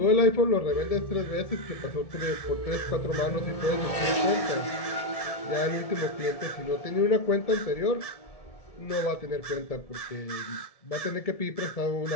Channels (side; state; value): right; late; 1.7 ms